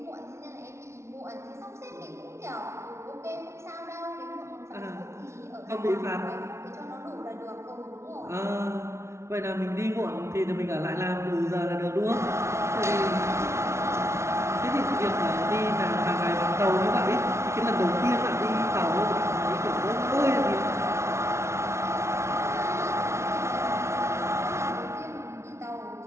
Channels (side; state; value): left; late; 0.13 ms